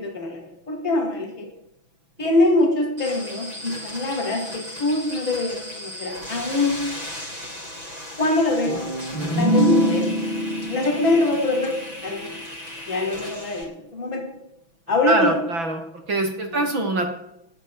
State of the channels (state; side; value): late; left; 6.0 ms